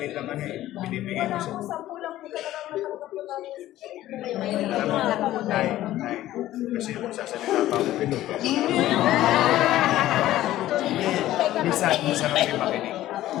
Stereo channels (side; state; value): right; quieter; 14.4 dB